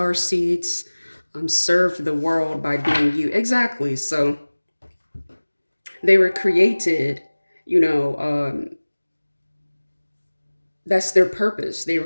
seeds, serve the world by being you. Exactly. So they were created, you know, that's their purpose. They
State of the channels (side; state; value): both; inverted; correlation -1.00